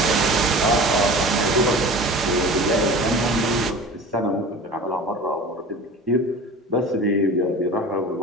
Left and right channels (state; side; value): normal; both; correlation 0.37